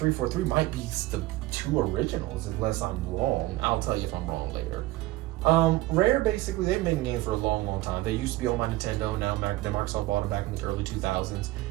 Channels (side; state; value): left; quieter; 17.5 dB